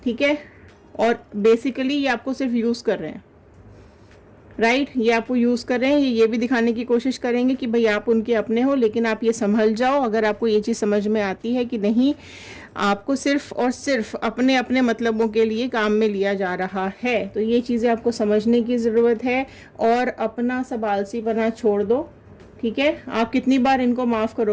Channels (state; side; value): identical; both; correlation 1.00